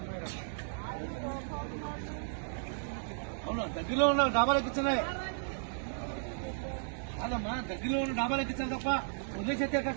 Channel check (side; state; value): left; silent; 55 dB below the other